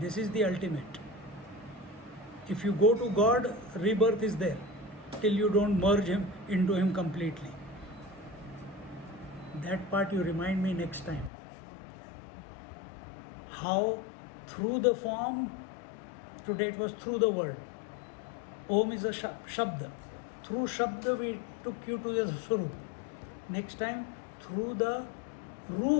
this is the ultimate. If you go to God, rebirth is there till you don't merge him into him completely. That part you remind me next time. How through the form, today it was through the word. Om is a shabda. Through shabda we took you to the Swarup. Next time, through the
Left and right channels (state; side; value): drops out; right; at 11.3 s